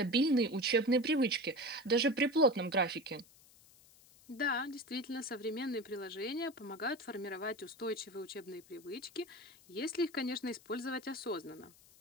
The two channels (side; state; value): left; noise; hiss, 25 dB below the sound